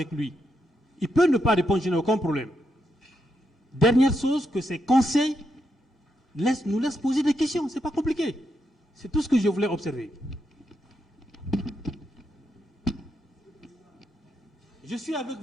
lui. Il peut ne pas répondre, je n'ai aucun problème. Dernière chose, que ces conseils nous laissent poser des questions. Ce n'est pas compliqué. C'est tout ce que je voulais observer. Je suis avec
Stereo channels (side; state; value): both; normal; correlation 0.82